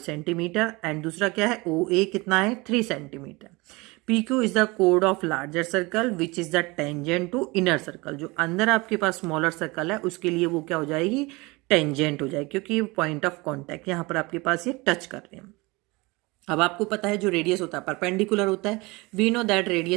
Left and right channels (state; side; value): quieter; left; 24.4 dB